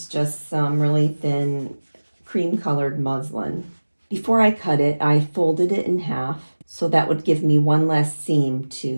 just some really thin cream colored muslin. Before I cut it, I folded it in half, so that would give me one less seam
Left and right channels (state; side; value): inverted; both; correlation -1.00